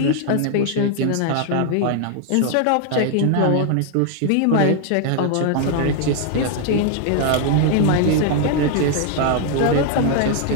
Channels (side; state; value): both; different; correlation 0.00